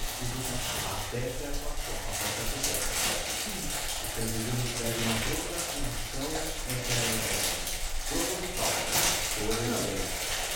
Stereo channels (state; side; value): identical; both; correlation 1.00